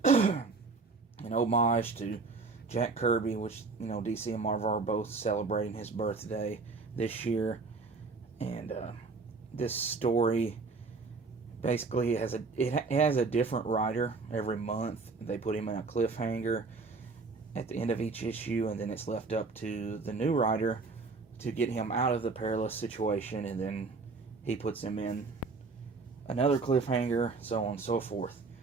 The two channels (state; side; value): quieter; left; 4.2 dB